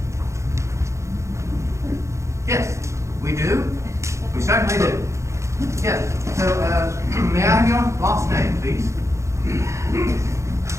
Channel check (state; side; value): late; left; 0.14 ms